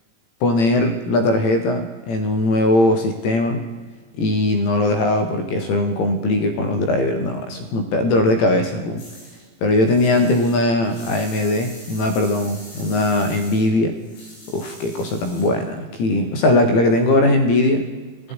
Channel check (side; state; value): right; late; 18 ms